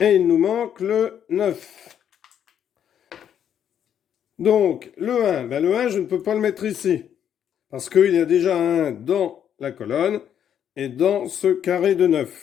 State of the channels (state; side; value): quieter; right; 9.2 dB